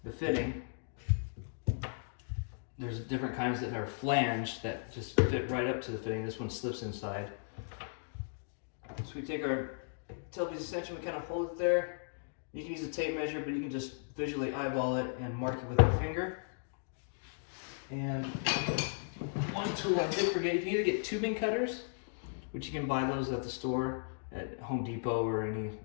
the fitting. There's different kinds that are flanged that just fit right up to the fitting. This one slips inside. So we take our tailpiece extension, we kind of hold it there. You can use a tape measure, but you can just visually eyeball it and mark it with your finger. And one tool I did forget, you can either get tubing cutters, which you can buy those at the store, at Home Depot or any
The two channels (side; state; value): right; silent; digital silence